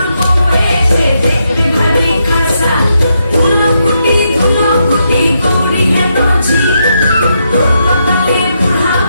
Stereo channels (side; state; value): both; inverted; correlation -0.81